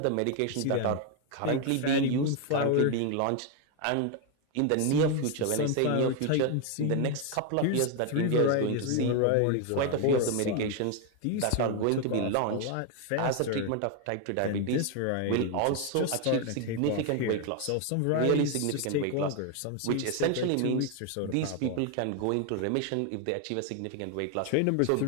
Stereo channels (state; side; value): different; both; correlation 0.01